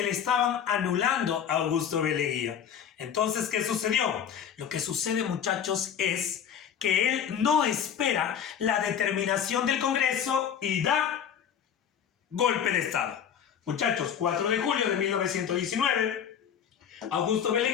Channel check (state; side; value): quieter; right; 8.4 dB